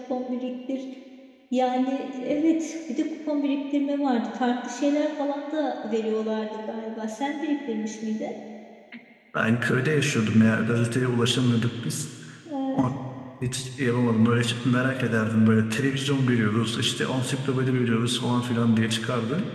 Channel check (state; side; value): identical; both; correlation 1.00